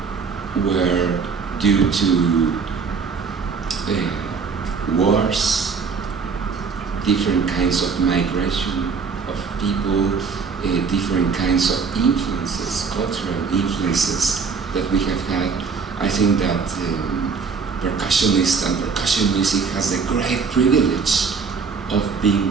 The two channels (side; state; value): left; quieter; 5.5 dB